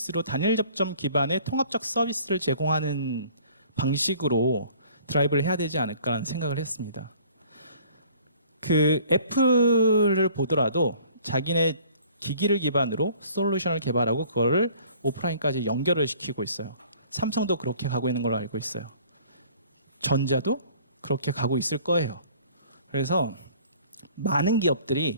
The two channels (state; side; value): inverted; both; correlation -0.53